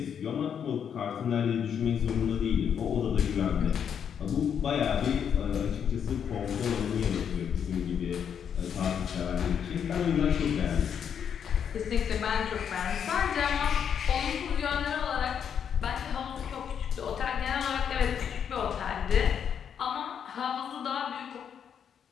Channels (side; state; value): right; quieter; 8.0 dB